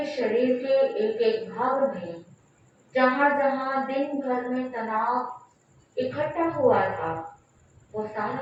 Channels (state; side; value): identical; both; correlation 1.00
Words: शरीर के एक एक भाग में जहां जहां दिन भर में तनाव इकट्ठा हुआ था, वो सारा